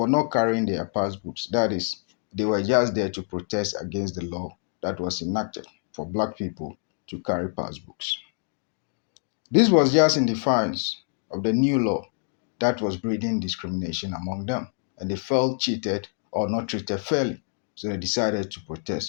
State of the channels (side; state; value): right; silent; 58 dB below the other